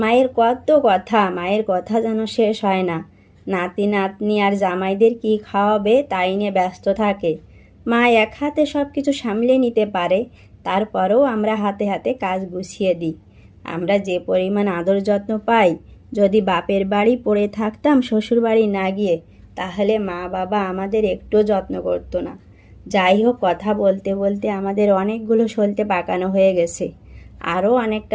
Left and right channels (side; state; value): both; identical; correlation 1.00